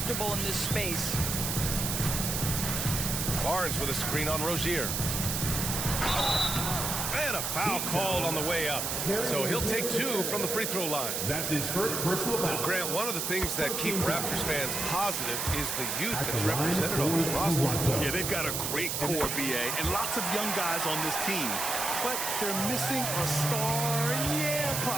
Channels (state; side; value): noise; right; hiss, 1 dB below the sound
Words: in this space. Barnes with a screen on Rozier. And a foul called on the way up. So he'll take 2 from the free throw line. That's his first personal foul. Grant, one of the things that keep Raptors fans positive is the youth that's represented on this roster. Yeah, they've got a great core, BA, and lots of young guys on this team. But they're missing a star, yeah,